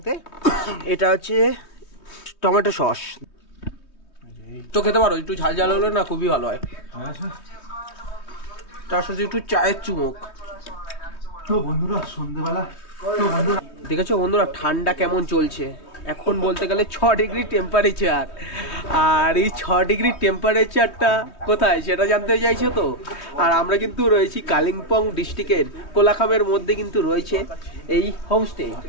এটা হচ্ছে টমেটো সস। তো খেতে পারো, একটু ঝাল ঝাল হলে না খুবই ভালো হয়, তার সাথে একটু চায়ের চুমুক। তো বন্ধুরা সন্ধ্যেবেলা দেখেছো বন্ধুরা ঠান্ডা কেমন চলছে, এখন বলতে গেলে 6 ডিগ্রি টেম্পারেচার। আর এই 6 ডিগ্রি টেম্পারেচারটা কোথায় সেটা জানতে চাইছো তো? আর আমরা কিন্তু রয়েছি কালিম্পং ডিস্ট্রিক্টের কোলাখামের মধ্যে কিন্তু রয়েছে এই হোমস্টে।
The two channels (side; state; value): right; late; 3.2 ms